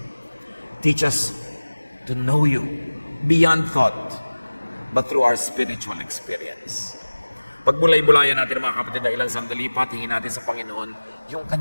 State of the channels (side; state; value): both; inverted; correlation -1.00